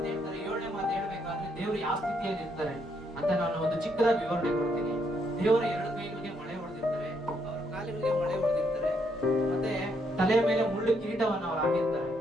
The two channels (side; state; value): both; normal; correlation 0.74